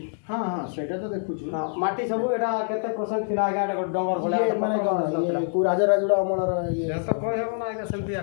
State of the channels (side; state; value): right; silent; digital silence